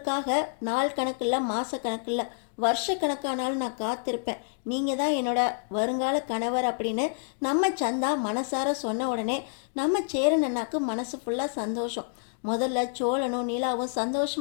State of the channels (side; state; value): right; silent; digital silence